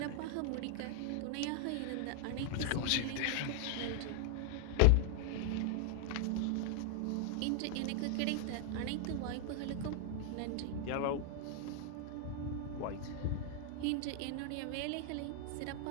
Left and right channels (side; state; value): both; different; correlation 0.00